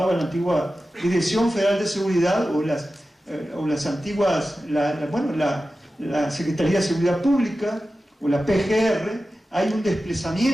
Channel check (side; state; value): both; normal; correlation 0.94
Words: la antigua Dirección Federal de Seguridad o las antiguas, la Secretaría de Seguridad Pública o la PGR. Hay un